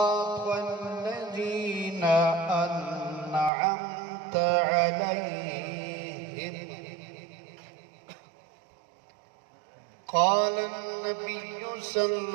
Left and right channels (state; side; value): drops out; left; at 3.5 s